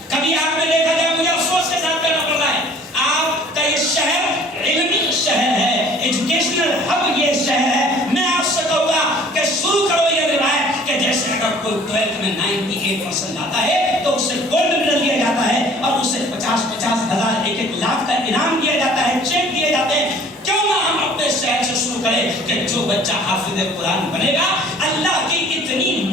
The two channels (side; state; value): both; normal; correlation 0.52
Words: کبھی آپ نے دیکھا جائے، مجھے افسوس کے ساتھ کہنا پڑ رہا ہے، آپ کا یہ شہر علمی شہر ہے، ایجوکیشنل ہب یہ شہر ہے. میں آپ سے کہوں گا کہ شروع کرو یہ روایت کہ جیسے اگر کوئی 12th میں 98% لاتا ہے تو اسے گولڈ میڈل دیا جاتا ہے اور اسے 50,000 1,00,000 کا انعام دیا جاتا ہے، چیک دیے جاتے ہیں. کیوں نہ ہم اپنے شہر سے شروع کرے کہ جو بچہ حافظ قرآن بنے گا اللہ کی اتنی